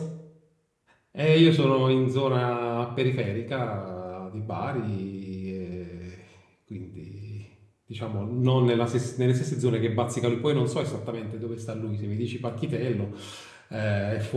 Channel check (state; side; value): identical; both; correlation 1.00